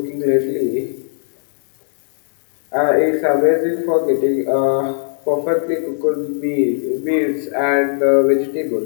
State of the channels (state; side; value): silent; right; digital silence